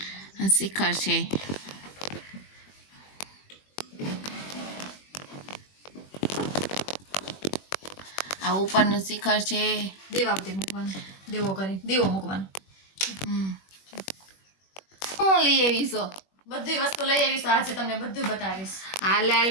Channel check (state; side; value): late; right; 21 ms